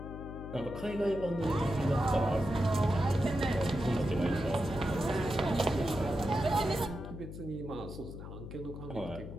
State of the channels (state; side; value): noise; left; hum, 10 dB below the sound